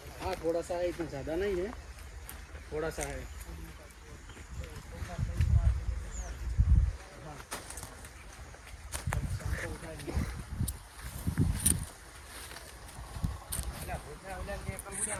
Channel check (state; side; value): identical; both; correlation 1.00